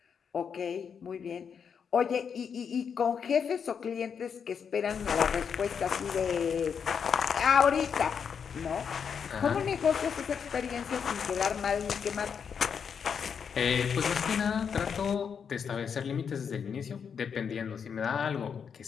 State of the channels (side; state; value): right; quieter; 6.9 dB